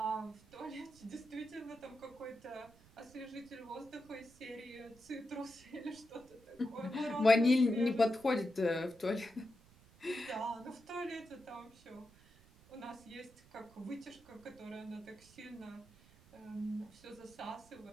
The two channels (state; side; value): noise; right; rumble, 25 dB below the sound